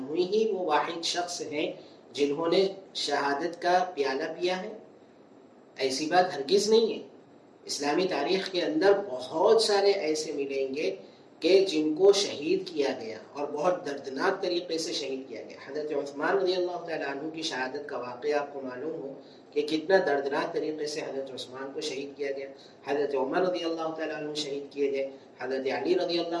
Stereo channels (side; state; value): both; identical; correlation 1.00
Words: ہی وہ واحد شخص ہیں جنہوں نے شہادت کا پیالہ پیا ہے؟ ایسی بات ہرگز نہیں ہے. اسلامی تاریخ کے اندر بہت سارے ایسے ملیں گے کہ جن کو شہید کیا گیا اور بہت دردناک طریقے سے شہید کیا گیا. حضرت عثمان رضی اللہ تعالیٰ عنہ کی شہادت کا واقعہ آپ کو معلوم ہو کہ کتنا دردناک طریقے سے حضرت عثمان کو شہید کیا گیا. حضرت عمر رضی اللہ تعالیٰ عنہ شہید کیے گئے. حضرت علی رضی